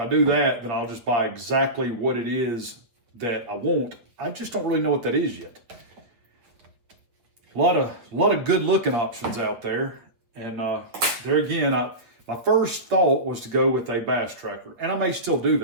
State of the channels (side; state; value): left; late; 8.4 ms